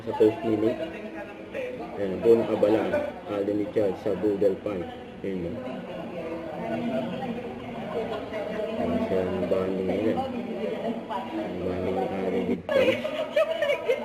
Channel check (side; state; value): both; identical; correlation 1.00